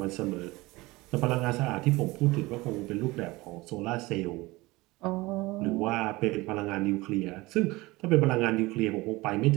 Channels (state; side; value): quieter; left; 21.4 dB